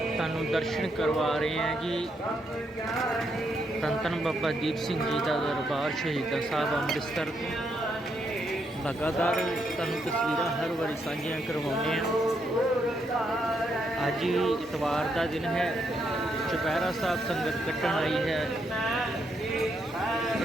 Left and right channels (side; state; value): both; normal; correlation 0.77